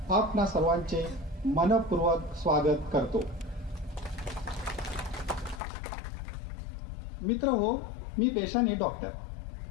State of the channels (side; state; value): right; drops out; at 5.6 s